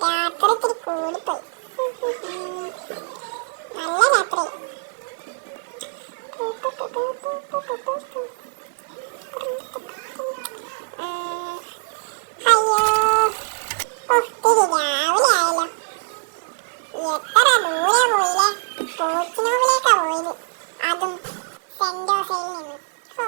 രാത്രി ഇത്തിരി കൂടിപ്പോയി. നല്ല രാത്രി. അയ്യോ ഒത്തിരി രാവിലെ ആയല്ലോ. എത്ര ദൂരെ പോയില്ലേ. പോച്ചിനോവിലേക്കാ പോയത്, അതും സെന്റ് ജോസയിൽ നിന്ന്.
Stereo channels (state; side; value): silent; left; digital silence